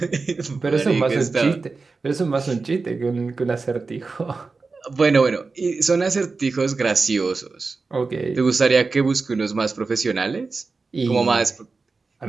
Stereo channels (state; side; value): quieter; left; 4.2 dB